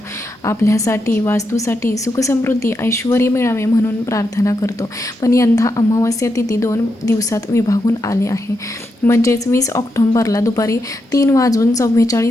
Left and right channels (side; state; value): both; normal; correlation 0.84